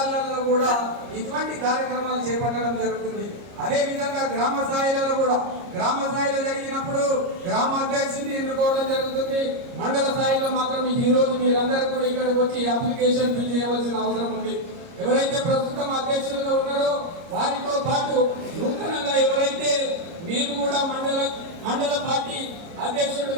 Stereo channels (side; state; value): left; late; 29 ms